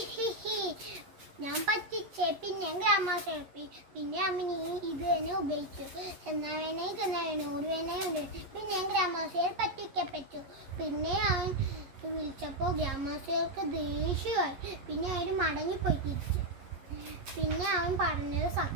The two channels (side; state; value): left; late; 11 ms